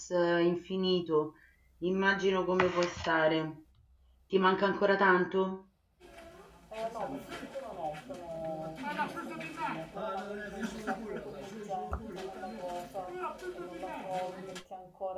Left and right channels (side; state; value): both; identical; correlation 1.00